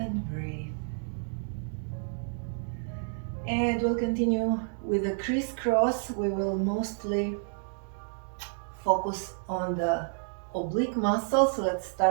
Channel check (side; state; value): left; silent; digital silence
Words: breathe. And we'll continue with the crisscross. We will mostly focus on the oblique muscle. So let's